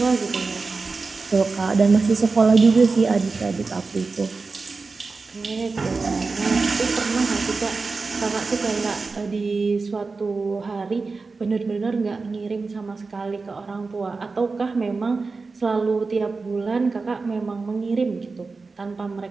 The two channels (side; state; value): left; quieter; 4.1 dB